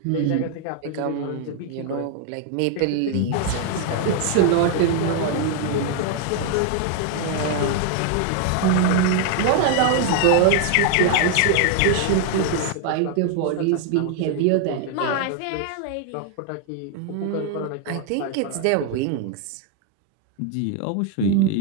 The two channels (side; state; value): both; different; correlation 0.00